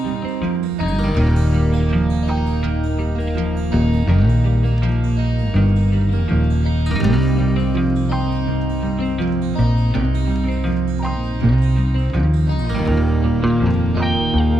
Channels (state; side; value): normal; both; correlation 0.86